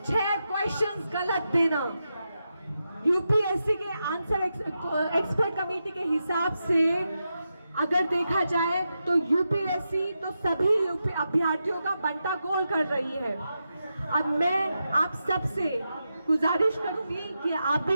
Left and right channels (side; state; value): both; inverted; correlation -0.88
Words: 6 क्वेश्चंस गलत देना। यूपीएससी के आंसर एक्सपर्ट कमेटी के हिसाब से अगर देखा जाए तो यूपीएससी तो सभी अभ्यर्थियों का बंटा गोल कर रही है। अब मैं आप सबसे गुजारिश करूंगी कि आप